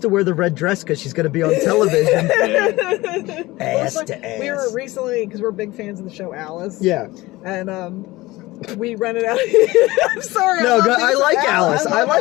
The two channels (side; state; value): right; quieter; 19.6 dB